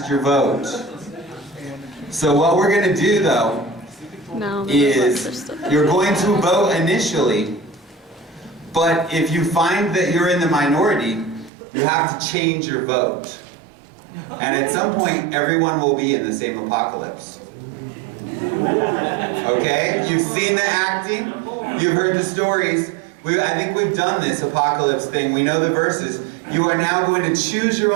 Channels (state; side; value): drops out; left; at 11.5 s